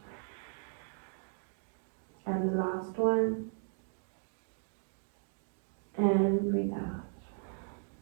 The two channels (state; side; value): silent; left; digital silence